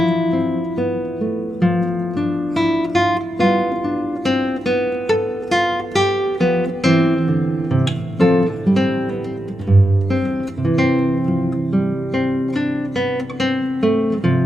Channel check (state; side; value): normal; both; correlation 0.87